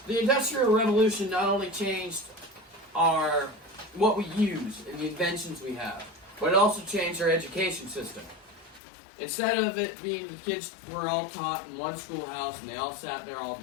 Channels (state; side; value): drops out; right; at 8.8 s